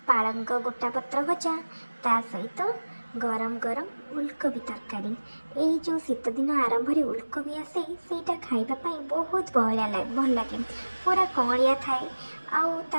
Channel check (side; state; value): both; inverted; correlation -1.00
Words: पालंग गोटा पत्र भजा, ता सहित गरम गरम उलकोबी तरकारी। ये जो शीत दिन आरंभ उलकोबी आसे सेटा खाइबापी बहुत भल लगे। पूरा कौलिया थाए आउ